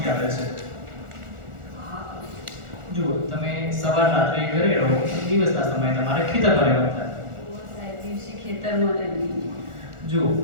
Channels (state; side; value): late; left; 1.4 ms